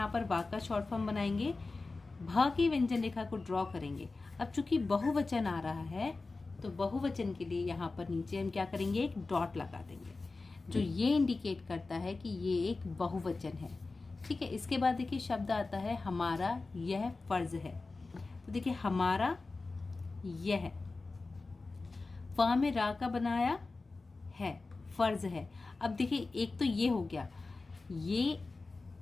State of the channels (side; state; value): right; quieter; 3.7 dB